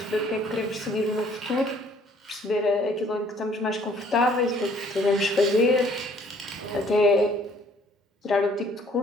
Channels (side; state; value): both; normal; correlation 0.60